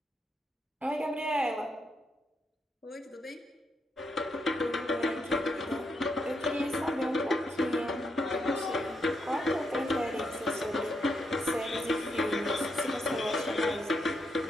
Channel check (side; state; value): both; normal; correlation 0.80